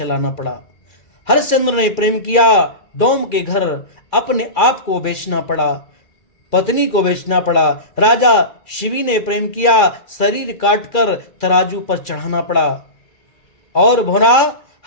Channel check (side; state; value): right; late; 2.3 ms